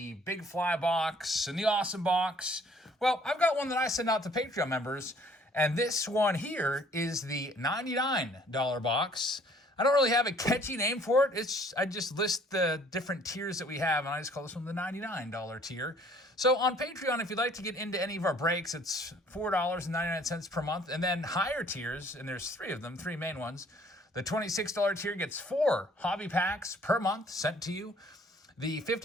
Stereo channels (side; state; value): both; normal; correlation 0.57